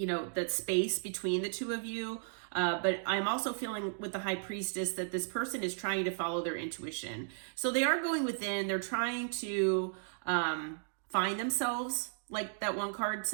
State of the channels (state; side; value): silent; left; digital silence